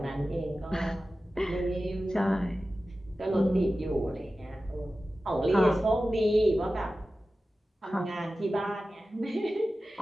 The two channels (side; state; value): both; normal; correlation 0.95